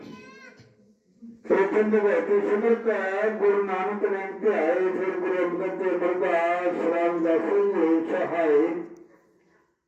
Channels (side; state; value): both; identical; correlation 1.00